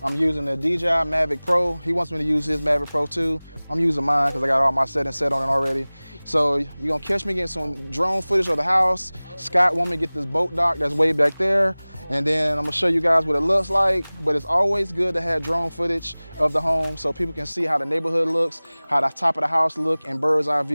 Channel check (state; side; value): inverted; both; correlation -1.00